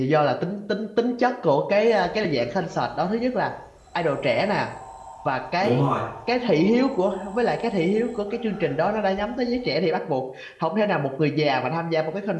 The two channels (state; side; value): identical; both; correlation 1.00